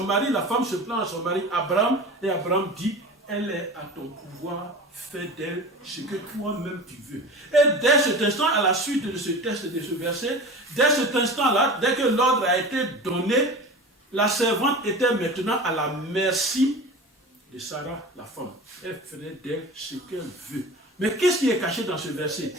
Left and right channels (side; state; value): both; normal; correlation 0.34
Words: mari, la femme se plaint à son mari Abraham, et Abraham dit, elle est à ton pouvoir, fais d'elle ce que toi-même tu veux. Et dès cet instant, à la suite de ce texte, de ce verset, dès cet instant-là, dès que l'ordre a été donné, la servante était maintenant à la merci de Sarah, la femme. Elle ferait d'elle ce qu'elle veut. Mais qu'est-ce qui est caché dans ce verset?